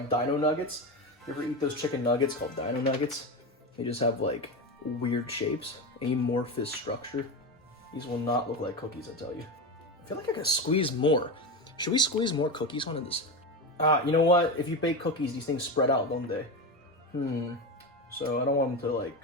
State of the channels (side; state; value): both; normal; correlation 0.19